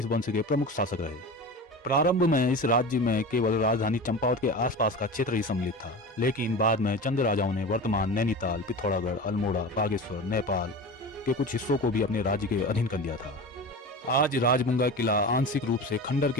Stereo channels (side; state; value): both; normal; correlation 0.30